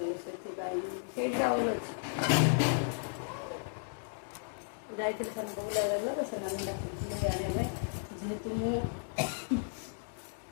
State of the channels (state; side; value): silent; right; digital silence